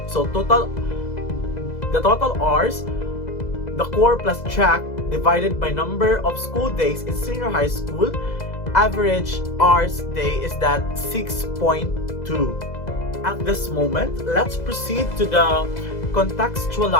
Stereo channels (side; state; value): right; late; 2.0 ms